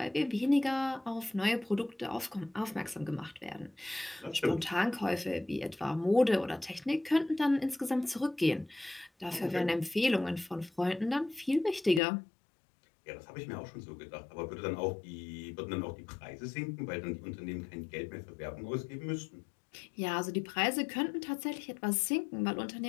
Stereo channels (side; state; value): right; drops out; at 12.0 s